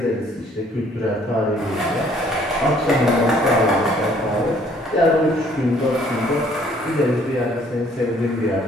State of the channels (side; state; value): both; normal; correlation 0.61